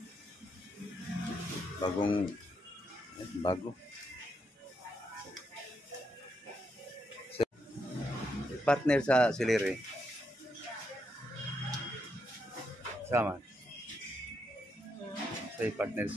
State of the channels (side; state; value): both; normal; correlation 0.80